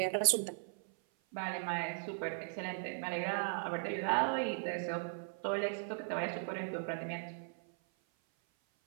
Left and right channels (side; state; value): left; silent; 53 dB below the other